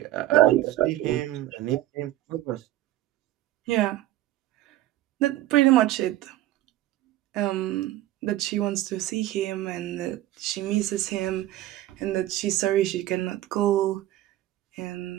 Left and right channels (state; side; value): quieter; left; 14.5 dB